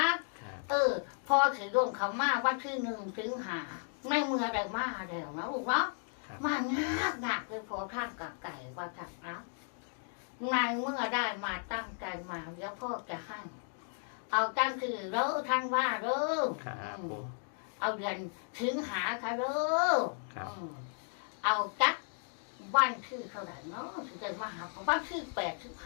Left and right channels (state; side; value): silent; right; 55 dB below the other